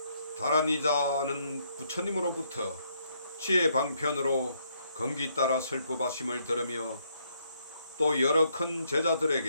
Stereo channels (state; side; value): inverted; both; correlation -0.72